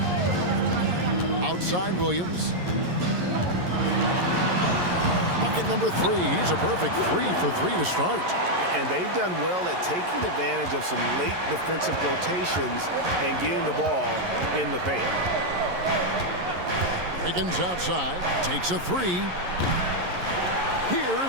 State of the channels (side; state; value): left; late; 11 ms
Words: Outside Williams. Bucket number 3. He's a perfect 3 for 3 to start. And they've done well at taking advantage of some late defensive rotations and getting the ball in the paint. Wiggins outside, takes a three.